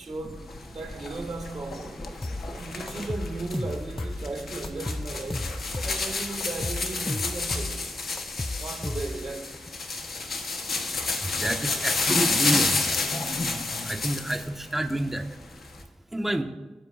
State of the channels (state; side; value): normal; both; correlation 0.83